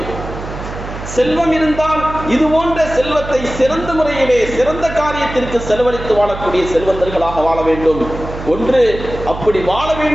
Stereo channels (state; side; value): noise; right; hum, 10 dB below the sound